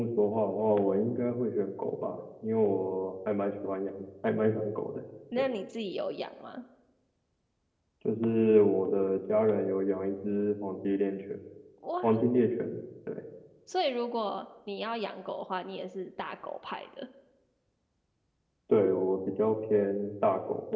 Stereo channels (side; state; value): both; identical; correlation 1.00